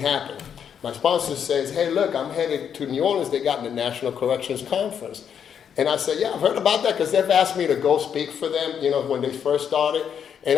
My sponsor says, hey, look, I'm headed to New Orleans. They got the National Corrections Conference. And I said, yeah, I've heard about that because they've asked me to go speak for them, when they first started. And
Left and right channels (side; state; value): right; quieter; 8.1 dB